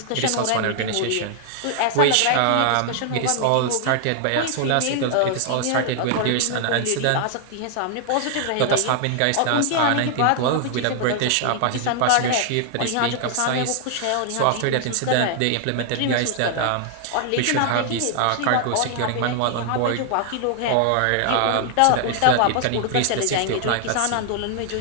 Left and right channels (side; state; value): both; different; correlation 0.00